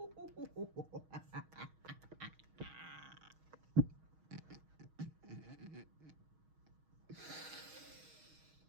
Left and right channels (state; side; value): late; left; 6.3 ms